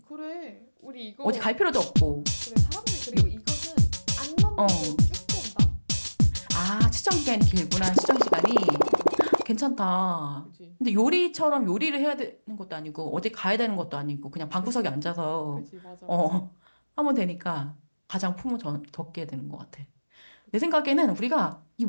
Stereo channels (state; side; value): inverted; both; correlation -1.00